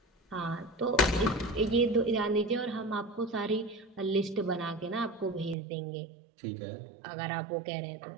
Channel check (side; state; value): left; drops out; at 5.6 s